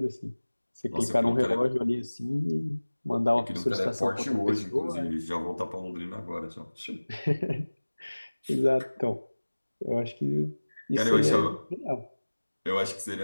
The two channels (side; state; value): both; inverted; correlation -1.00